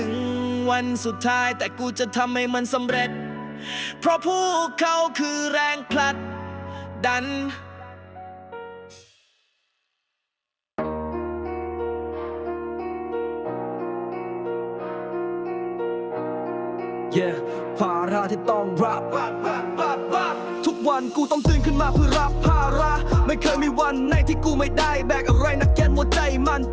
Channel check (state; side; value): identical; both; correlation 1.00